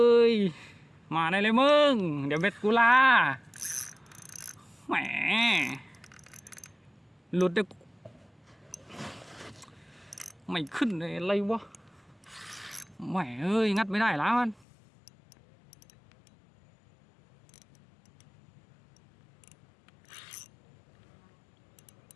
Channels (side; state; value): right; drops out; at 14.7 s